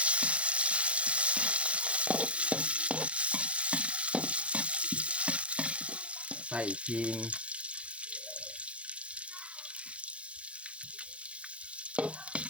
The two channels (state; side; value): late; left; 0.061 ms